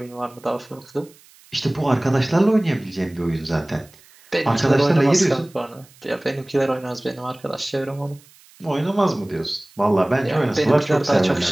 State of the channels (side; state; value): right; noise; hiss, 27 dB below the sound